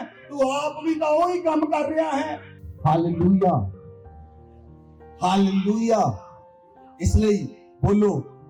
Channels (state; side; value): identical; both; correlation 1.00